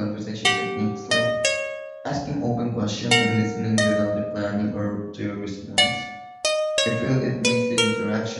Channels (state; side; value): identical; both; correlation 1.00